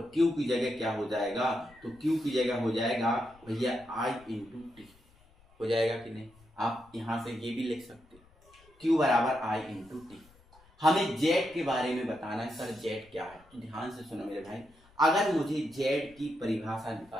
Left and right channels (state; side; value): noise; left; rumble, 28 dB below the sound